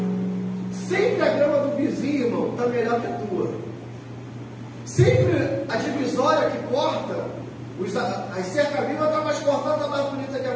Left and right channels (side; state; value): both; identical; correlation 1.00